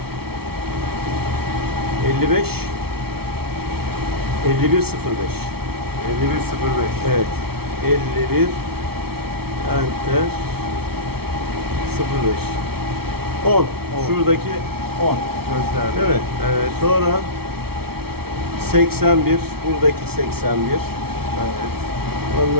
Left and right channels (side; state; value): left; late; 0.95 ms